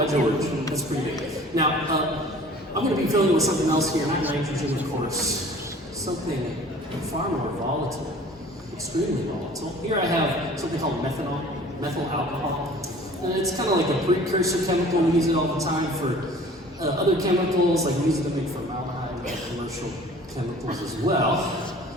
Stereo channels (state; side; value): normal; both; correlation 0.48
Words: George. That's pretty big. Now, I'm going to be filling with something else here, not nitrogen, of course. Something far more volatile, extremely volatile. Here I have something called methanol, methyl alcohol. And it's kind of like a precursor chemical. We use it all the time for other chemicals, like we use it to make formaldehyde and commercial chemicals as well.